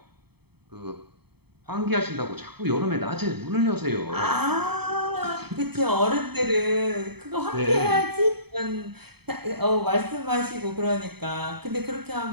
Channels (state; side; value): late; left; 0.97 ms